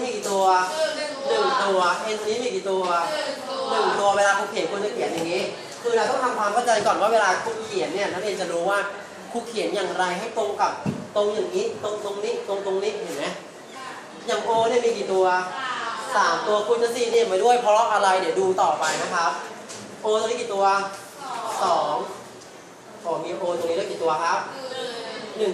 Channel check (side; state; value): both; identical; correlation 1.00